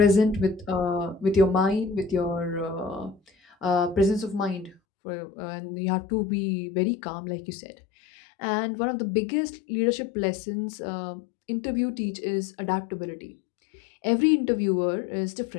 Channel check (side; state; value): right; drops out; at 4.8 s